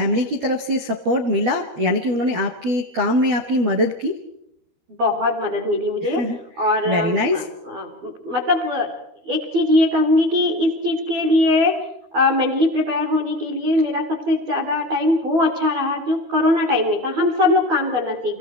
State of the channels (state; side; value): late; left; 13 ms